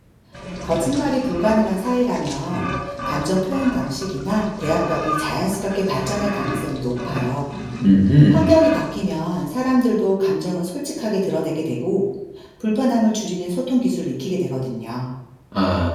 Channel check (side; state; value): both; identical; correlation 1.00